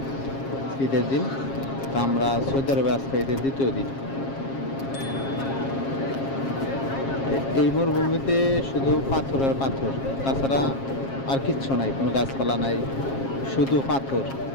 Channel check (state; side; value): late; right; 7.4 ms